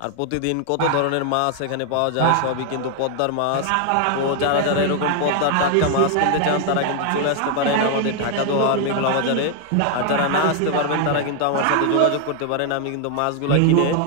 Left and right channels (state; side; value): different; both; correlation 0.00